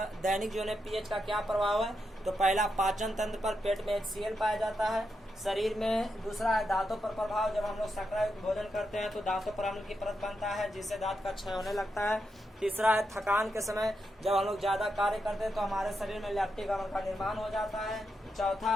दैनिक जीवन में पीएच का क्या प्रभाव है? तो पहला, पाचन तंत्र पर, पेट में HCl पाया जाता है शरीर में। दूसरा है दांतों पर प्रभाव, जब हम लोग शर्करा युक्त भोजन करते हैं तो दांतों पर अम्ल की परत बनता है जिससे दांत का क्षय होने लगता है। तीसरा है थकान के समय, जब हम लोग ज्यादा कार्य करते हैं तो हमारे शरीर में लैक्टिक अम्ल का निर्माण हो जाता है। चौथा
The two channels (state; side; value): normal; both; correlation 0.84